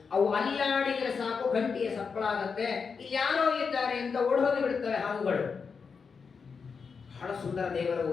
ಅವು ಅಲ್ಲಾಡಿದ್ರೆ ಸಾಕು ಗಂಟಿಯ ಸಪ್ಪಳ ಆಗತ್ತೆ, ಇಲ್ಲಿ ಯಾರೋ ಇದ್ದಾರೆ ಅಂತ ಓಡೋಗಿ ಬಿಡ್ತವೆ ಹಾವುಗಳು. ಬಹಳ ಸುಂದರ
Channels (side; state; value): right; quieter; 5.5 dB